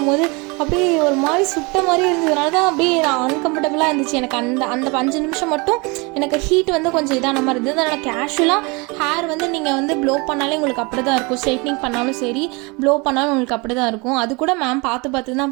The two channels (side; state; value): left; quieter; 28.1 dB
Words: அப்படியே ஒரு மாதிரி சுட்ட மாதிரி இருந்ததுனால தான் அப்படியே நான் அன்கம்ஃபர்டபுளாக இருந்துச்சு எனக்கு. அந்த அந்த 5 நிமிஷம் மட்டும் எனக்கு ஹீட் வந்து கொஞ்சம் இதான மாதிரி இருந்தது. அதனால் கேஷுவலாக ஹேர் வந்து நீங்கள் வந்து ப்ளோ பண்ணாலே உங்களுக்கு அப்படி தான் இருக்கும். ஸ்ட்ரைட்னிங் பண்ணாலும் சரி, ப்ளோ பண்ணாலும் உங்களுக்கு அப்படி தான் இருக்கும். அது கூட மேம் பார்த்து பார்த்து